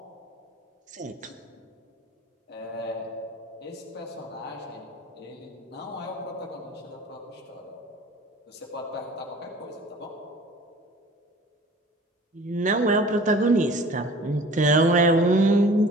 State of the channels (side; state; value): both; normal; correlation 0.46